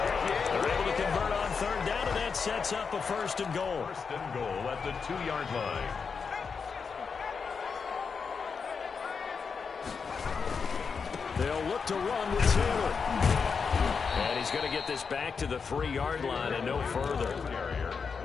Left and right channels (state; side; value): quieter; right; 5.6 dB